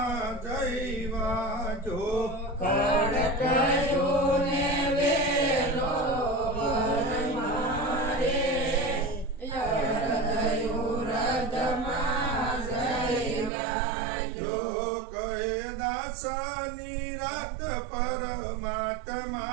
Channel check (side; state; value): left; drops out; at 13.5 s